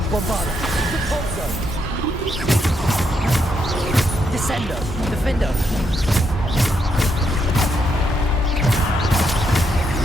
Bombarda! Depulso! Descendo! Defendo!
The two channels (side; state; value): both; normal; correlation 0.78